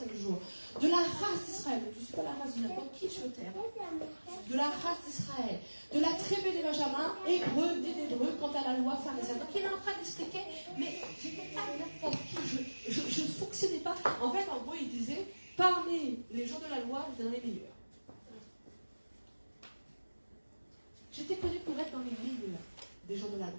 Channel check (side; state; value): both; inverted; correlation -1.00